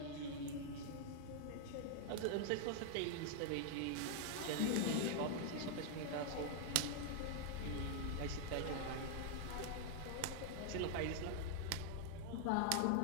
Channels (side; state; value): both; different; correlation 0.00